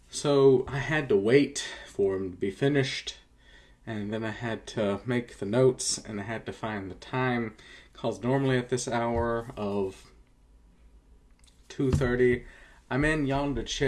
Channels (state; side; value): identical; both; correlation 1.00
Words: So I had to wait for them to be finished, and then I had to make the notes, and I had to find the time. Because normally at this hour of 2:30, I'm in yonder